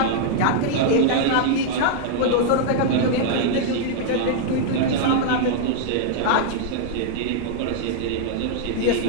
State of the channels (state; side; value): different; both; correlation -0.01